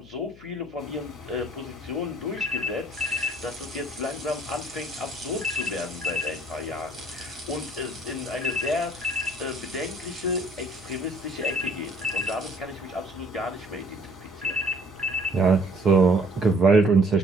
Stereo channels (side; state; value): left; noise; hum, 22 dB below the sound